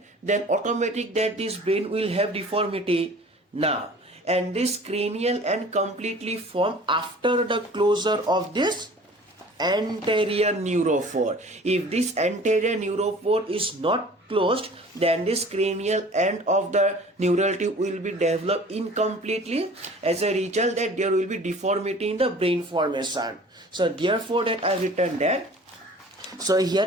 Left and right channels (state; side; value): normal; both; correlation 0.46